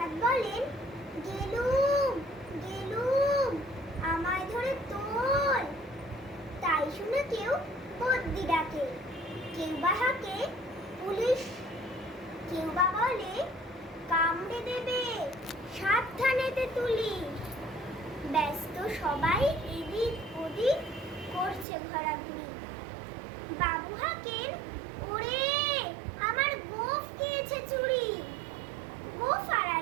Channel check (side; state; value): left; drops out; at 21.7 s